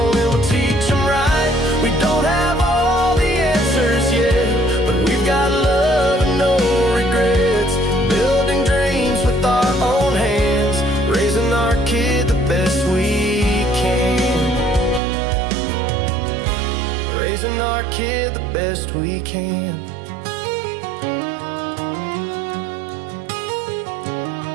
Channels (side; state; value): left; drops out; at 15.0 s